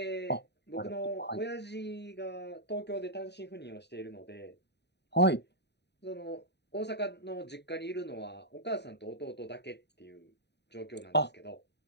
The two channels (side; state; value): right; late; 0.50 ms